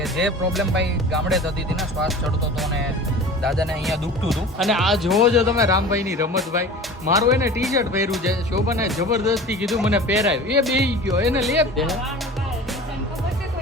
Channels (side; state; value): both; normal; correlation 0.38